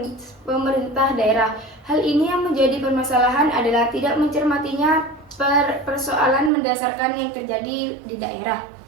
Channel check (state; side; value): drops out; left; at 6.5 s